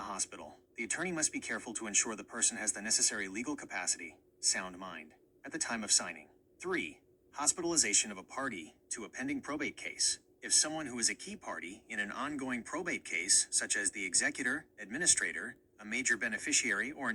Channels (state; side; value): identical; both; correlation 1.00